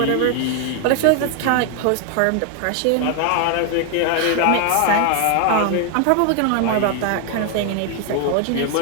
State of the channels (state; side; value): different; both; correlation 0.00